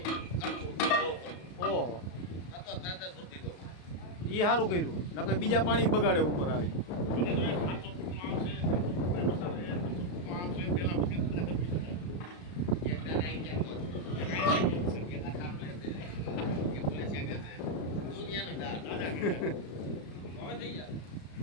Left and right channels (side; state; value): right; late; 34 ms